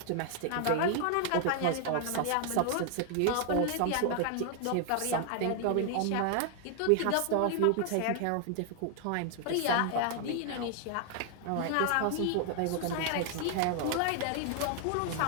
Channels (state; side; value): different; both; correlation 0.00